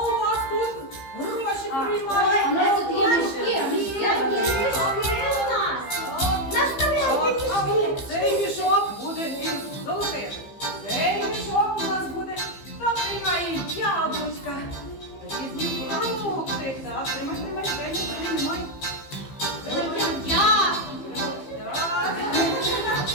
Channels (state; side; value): late; right; 15 ms